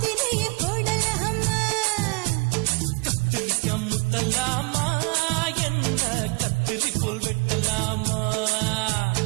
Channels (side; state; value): left; quieter; 31.1 dB